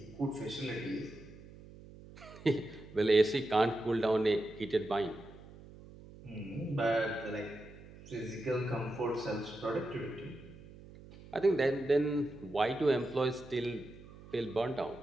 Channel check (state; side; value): noise; right; hum, 18 dB below the sound